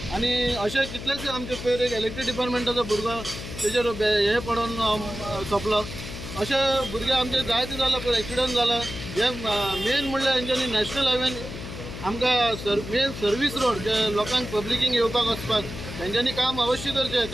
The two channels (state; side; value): noise; left; hum, 10 dB below the sound